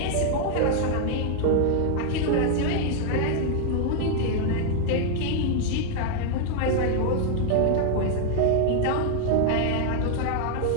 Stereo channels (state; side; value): different; both; correlation 0.00